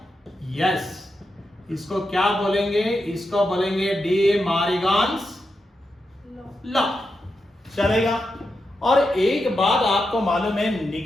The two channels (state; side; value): normal; both; correlation 0.87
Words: यस। इसको क्या बोलेंगे, इसको बोलेंगे डी मारिगान्स लॉ, चलेगा। और एक बात आपको मालूम है,